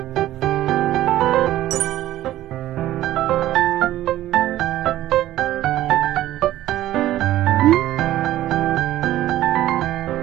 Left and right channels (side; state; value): left; quieter; 14.1 dB